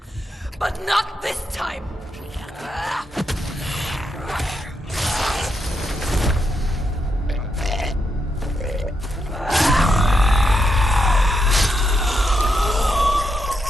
But not this time!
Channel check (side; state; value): both; normal; correlation 0.82